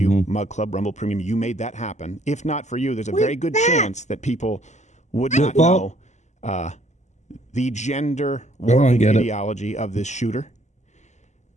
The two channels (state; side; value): late; right; 0.34 ms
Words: Mug Club, Rumble Premium. You made that happen. If not for you, there's a very good chance that people would not know the gender warping ideology of this shooter.